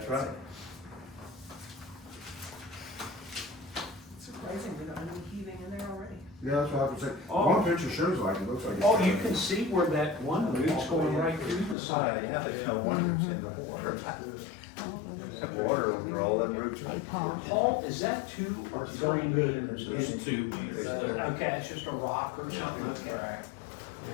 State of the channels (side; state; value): right; drops out; at 11.8 s